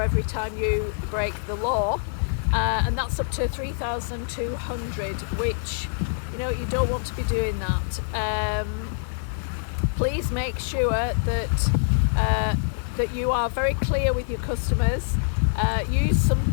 every time you break the law, and that's up to 3,200, which, you don't want to be doing that. Please make sure that you are very clear with your customers. Use some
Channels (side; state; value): right; silent; 62 dB below the other